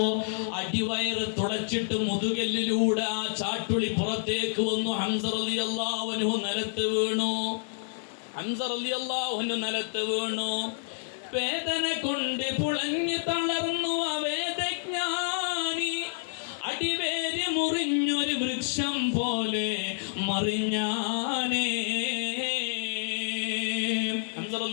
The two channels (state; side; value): silent; right; digital silence